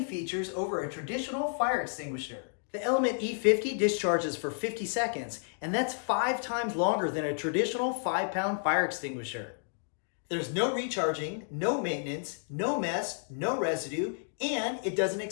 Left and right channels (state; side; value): silent; right; digital silence